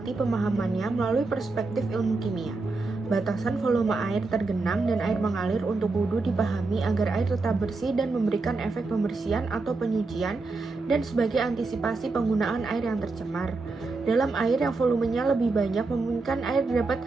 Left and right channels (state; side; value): quieter; left; 3.7 dB